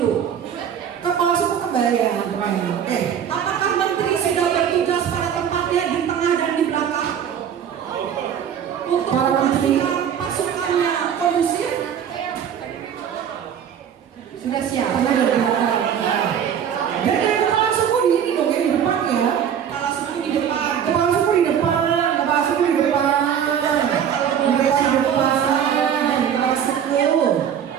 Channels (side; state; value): left; quieter; 8.7 dB